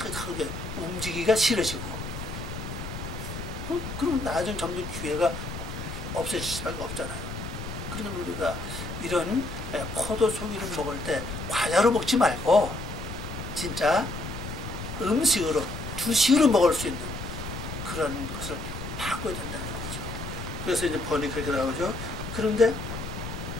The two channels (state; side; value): noise; left; rumble, 7 dB below the sound